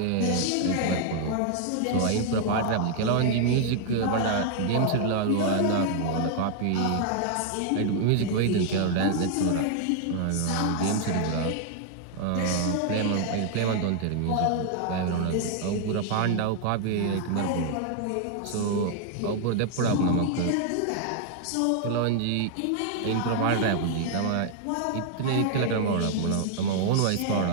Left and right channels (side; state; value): both; different; correlation 0.00